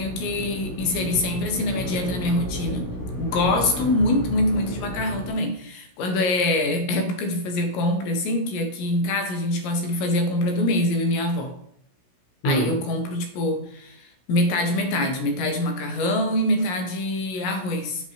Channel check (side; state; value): right; late; 16 ms